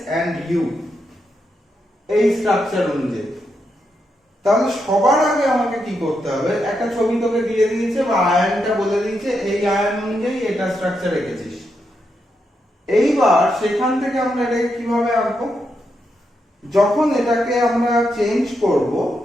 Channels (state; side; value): normal; both; correlation 0.83